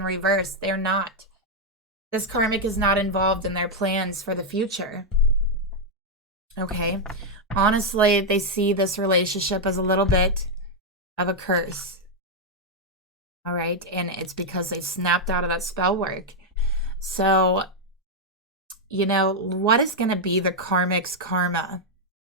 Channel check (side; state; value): both; normal; correlation -0.01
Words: reverse. They're not. This karmic is not involved in their plans for the future. Okay. Honestly, they see this relationship as a little bit of a curse. All right. And it's because they snapped out of that spell work. So, you know, what is going to be the karmic's karma